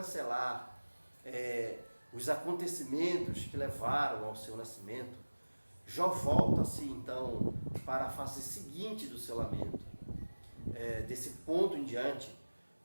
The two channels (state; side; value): inverted; both; correlation -1.00